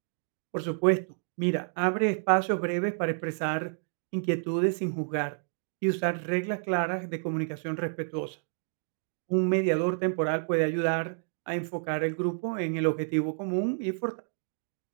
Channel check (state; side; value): silent; left; digital silence